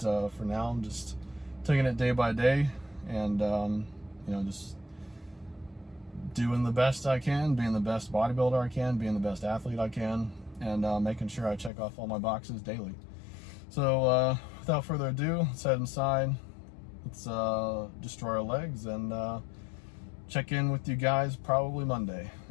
for now, I'm just taking it day by day, and just doing the best I can, being the best bodybuilder I can, being the best athlete I can, and making sure I check off all my boxes daily. So without further ado, let's head inside. Let's destroy our legs and check in with you guys probably Monday.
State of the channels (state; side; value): drops out; right; at 11.7 s